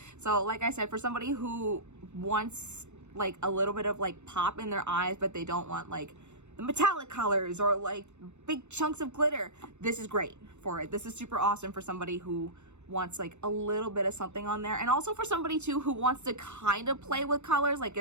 So, like I said, for somebody who wants like a little bit of like pop in their eyes, but they don't want like the metallic colors or like big chunks of glitter, this is great for it. This is super awesome for somebody who wants like a little bit of something on there, and also for somebody too who wants to kind of play with colors, like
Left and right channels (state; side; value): late; left; 0.83 ms